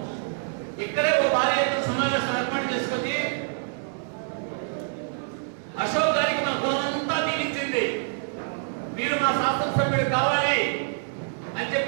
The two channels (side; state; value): left; silent; digital silence